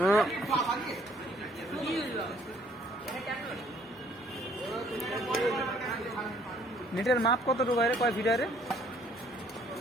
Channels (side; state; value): both; normal; correlation 0.61